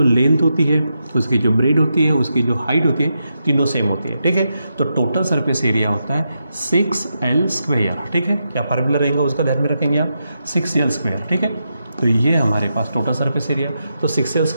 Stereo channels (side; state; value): both; inverted; correlation -0.85